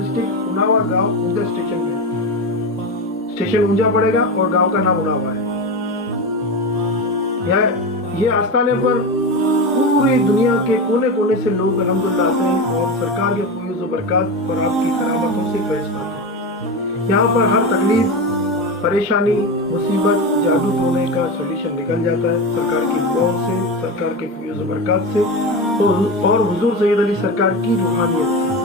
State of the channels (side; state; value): both; normal; correlation 0.21